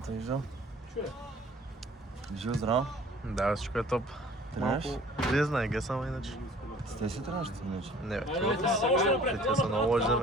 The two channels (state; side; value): normal; both; correlation 0.51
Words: те виждал? Живо здраво. Да, всичко е топ. Тренираш? Вие знае, ге само иначе. С те си тренираш, иначе? Не, бе, те са много лоши за